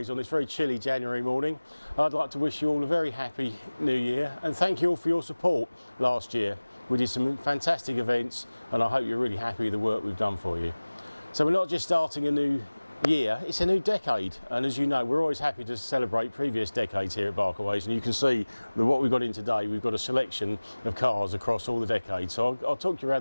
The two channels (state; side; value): inverted; both; correlation -1.00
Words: on this very chilly January morning. I'd like to wish you all a very happy new year and thank you all for your support last year. We did some fantastic events and I hope you're really happy with the work we've done for you. So we're not just starting a new year, it's a new decade, and as you know we're always happy to celebrate previous decades here at Barkaways, and you can see that what we've got in today, we've got a selection of cars across all the decades. So I'll talk you